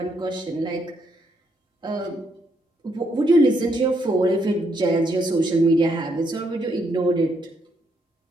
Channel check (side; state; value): both; normal; correlation 0.75